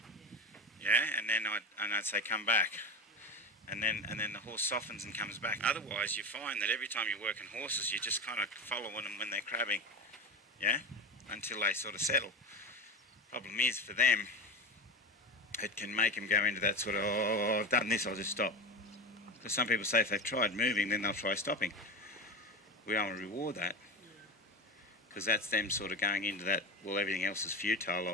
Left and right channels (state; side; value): normal; both; correlation 0.24